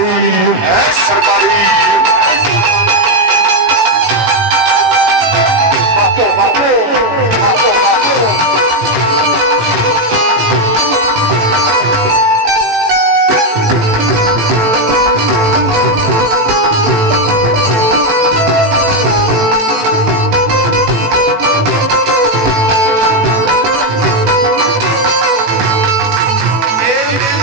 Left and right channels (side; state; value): left; late; 18 ms